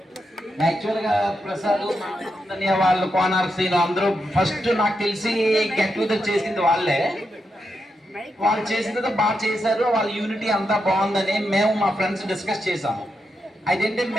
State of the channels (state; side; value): normal; both; correlation 0.85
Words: యాక్చువల్గా ప్రసాద్ వాళ్ళు కోనార్ శ్రీను అందరూ ఫస్ట్ నాకు తెలిసి గెట్ టుగెదర్ చేసింది వాళ్ళే. వాళ్ళు చేసింది బాగా చేశారు, వాళ్ళ యూనిటీ అంతా బాగుందని మేము మా ఫ్రెండ్స్ డిస్కస్ చేసాము. అదేంటి